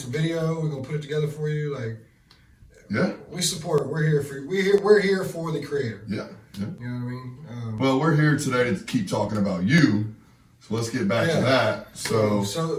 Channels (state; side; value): identical; both; correlation 1.00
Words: video. We're going to put it together for you. Like, we support it. We're here for you. We're here for the creator. Yeah. You know what I mean? Well, we're here today to keep talking about you. So let's get back to that. So